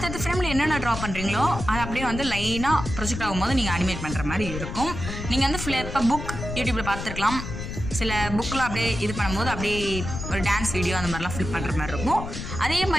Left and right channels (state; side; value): noise; left; rumble, 7 dB below the sound